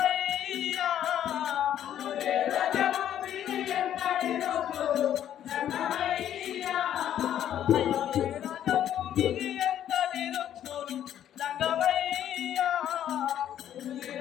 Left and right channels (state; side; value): quieter; right; 10.7 dB